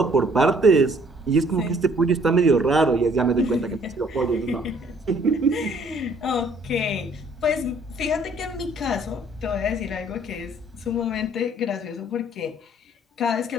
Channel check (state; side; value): normal; both; correlation 0.60